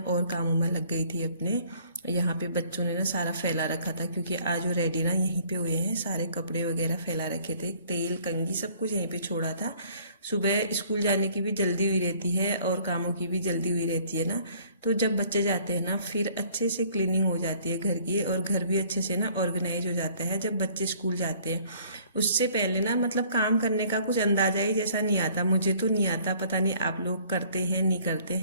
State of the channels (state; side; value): inverted; both; correlation -0.58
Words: और कामों में लग गई थी अपने। यहाँ पे बच्चों ने ना सारा फैला रखा था, क्योंकि आज वो रेडी ना यहीं पे हुए हैं, सारे कपड़े वगैरह फैला रखे थे, तेल कंघी सब कुछ यहीं पे छोड़ा था। सुबह स्कूल जाने की भी जल्दी हुई रहती है और कामों की भी जल्दी हुई रहती है ना, तो जब बच्चे जाते हैं ना फिर अच्छे से क्लीनिंग हो जाती है घर की, और घर भी अच्छे से ना ऑर्गेनाइज हो जाता है जब बच्चे स्कूल जाते हैं। उससे पहले ना मतलब काम करने का कुछ अंदाजा ही जैसा नहीं आता, मुझे तो नहीं आता, पता नहीं आप लोग करते हैं नहीं करते